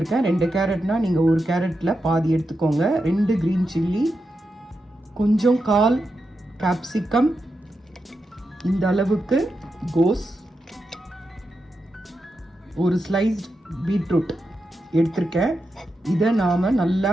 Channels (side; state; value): both; normal; correlation 0.87